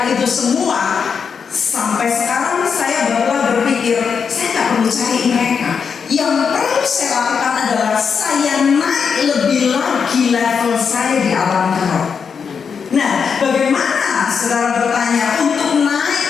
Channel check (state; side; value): quieter; right; 6.2 dB